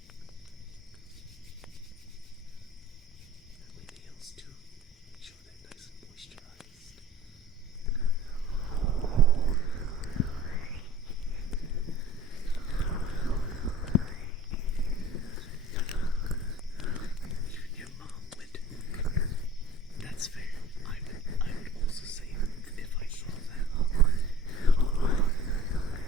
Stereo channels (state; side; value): normal; both; correlation 0.45